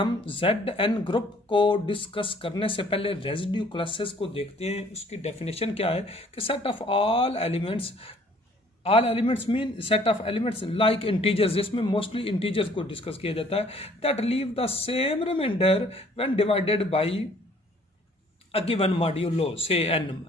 Zn ग्रुप को डिस्कस करने से पहले रेजिड्यू क्लासेस को देखते हैं. उसकी डेफिनेशन क्या है कि set of all elements mean set of elements like integers, जिसमें मोस्टली इंटीजर्स को डिस्कस किया जाता है, that leave the same remainder when divided by a given modulo से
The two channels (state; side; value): normal; both; correlation 0.58